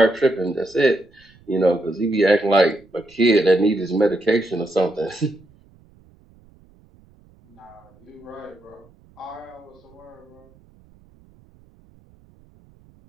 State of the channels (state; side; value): noise; right; rumble, 29 dB below the sound